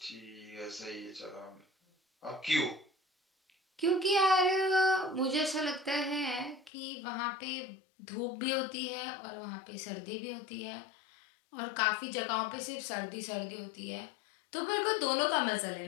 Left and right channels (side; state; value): right; drops out; at 6.7 s